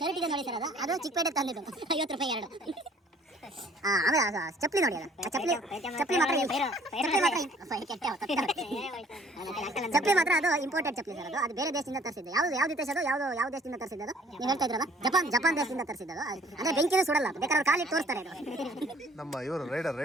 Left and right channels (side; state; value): both; normal; correlation 0.56